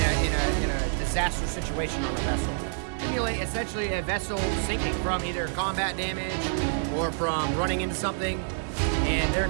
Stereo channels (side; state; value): left; silent; digital silence